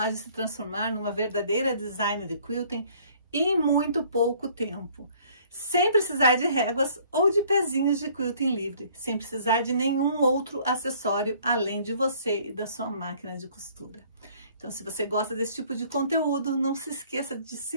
de se transformar numa verdadeira designer de quilting em muito pouco tempo, sem precisar de réguas ou de pezinhos de quilting livre, sem precisar de nenhum outro acessório além de você e da sua máquina de costura. Então, se você gosta desse tipo de conteúdo, não se esqueça de se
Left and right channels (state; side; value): inverted; both; correlation -0.58